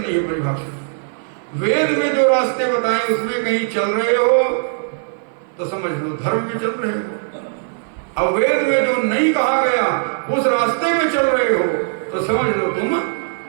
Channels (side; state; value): left; silent; 56 dB below the other